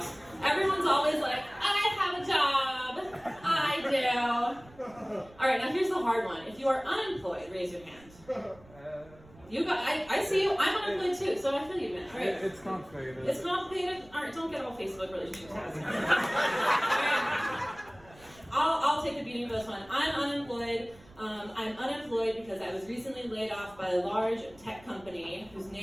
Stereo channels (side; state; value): right; noise; rumble, 24 dB below the sound